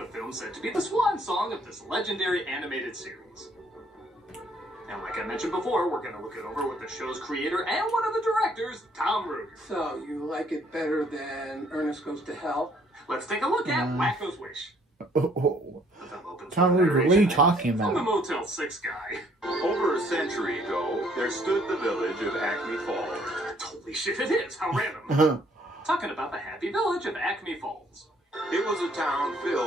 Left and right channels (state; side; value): normal; both; correlation 0.64